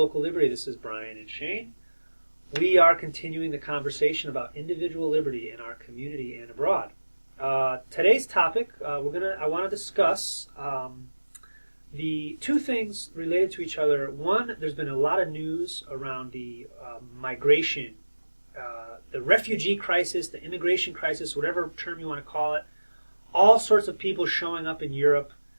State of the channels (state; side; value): inverted; both; correlation -1.00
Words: Liberty. This is Brian and Shane. We are continuing the conversation about individual liberty in our community and abroad. Today's topic, I want to discuss the two things related to each other. One, there's been a lot of news around the migration, the refugee crisis, the immigration crisis, whatever term you want to call it. All sorts of people showing up in Europe,